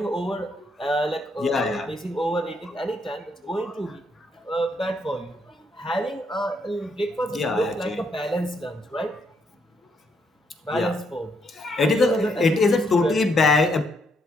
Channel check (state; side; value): normal; both; correlation 0.74